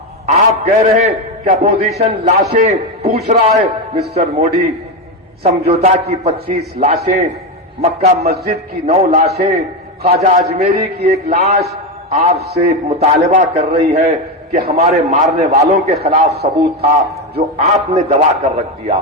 आप कह रहे हैं कि अपोजिशन लाशें पूछ रहा है। मिस्टर मोदी, समझौता की 25 लाशें, मक्का मस्जिद की 9 लाशें, ख्वाजा अजमेरी की 1 लाश आपसे मुतालबा कर रही है कि हमारे मारने वालों के खिलाफ सबूत था जो आपने दबा कर रख दिया।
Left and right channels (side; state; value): both; normal; correlation 0.12